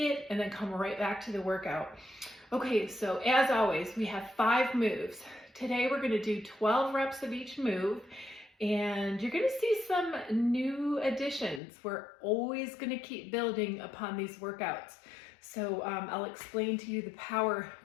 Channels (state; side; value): drops out; right; at 11.6 s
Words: and then come right back to the workout. Okay, so as always, we have 5 moves. Today we're gonna do 12 reps of each move. And you're gonna see some new additions. We're always gonna keep building upon these workouts. So I'll explain to you the power